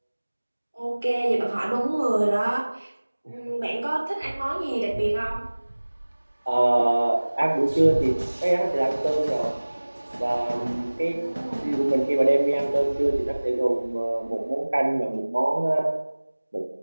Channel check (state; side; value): inverted; both; correlation -1.00